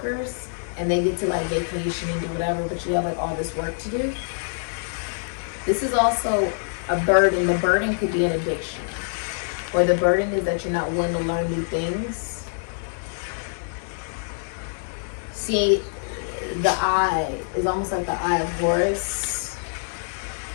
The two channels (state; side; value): silent; right; digital silence